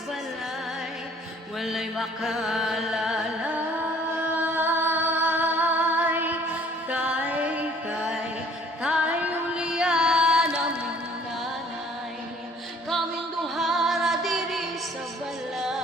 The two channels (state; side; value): normal; both; correlation 0.56